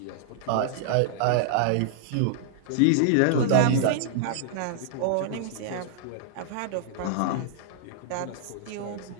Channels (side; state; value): both; different; correlation -0.01